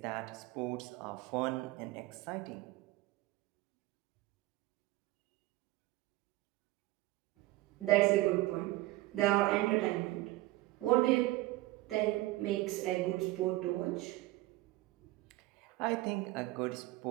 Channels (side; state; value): left; quieter; 18.5 dB